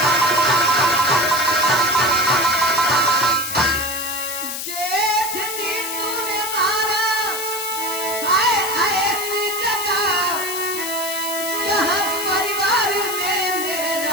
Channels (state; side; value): noise; left; hiss, 5 dB below the sound